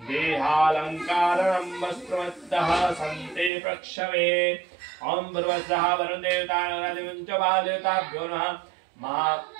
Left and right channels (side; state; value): left; drops out; at 3.5 s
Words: वस्त्रमद्दः सन्ते प्रक्षवे। ओम भर्वस्वः वरुणदेवताभ्यो नमः।